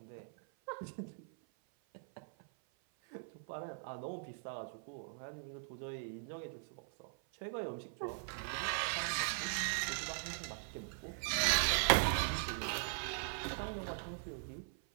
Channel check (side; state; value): left; silent; 51 dB below the other